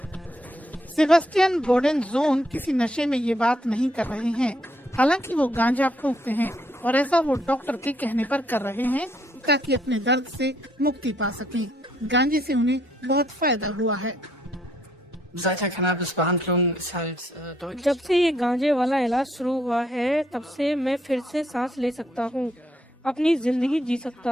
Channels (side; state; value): both; normal; correlation 0.71